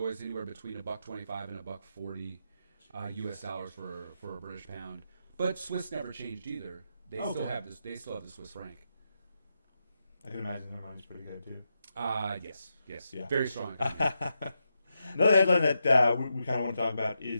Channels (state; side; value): inverted; both; correlation -0.86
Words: anywhere between $1.25 and $1.40 U.S. dollars for a British pound. But Swiss never changed either. They still have this. They still have the Swiss franc. I can imagine their money's pretty good too. Yes, yeah. Very strong. Another headline that we kind of want to talk about